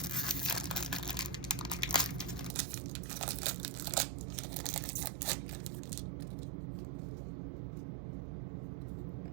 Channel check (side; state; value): left; drops out; at 2.5 s